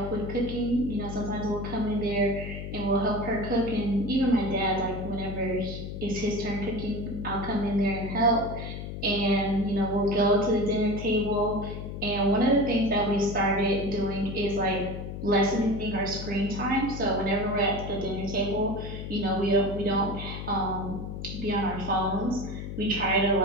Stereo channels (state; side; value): noise; left; hum, 7 dB below the sound